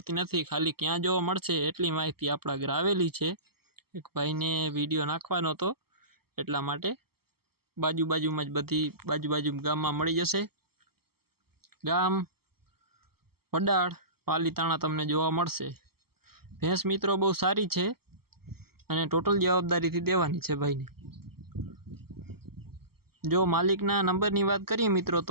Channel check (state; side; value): late; left; 0.95 ms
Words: નથી, ખાલી ક્યાં જોવા મળશે એટલી માહિતી આપણા ઘરે આવેલી છે। એક ભાઈને વિડીયો નાખવાનો હતો એટલા માટે બાજુમાં જ બધી બાજુ ગામમાં મળી જશે। ગામ વડાળ પાલીતાણા તમને જોવા મળશે। ભેંસ મિત્રો બહુ સારી છે અને ટોટલ જવાબદારીથી દેવાની છે ભાઈને। જો માલિકના નંબરની વાત કરીએ મિત્રો